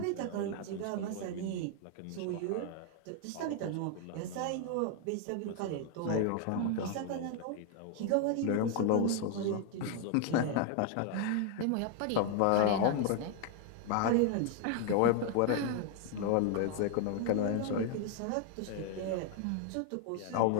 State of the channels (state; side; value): different; both; correlation 0.00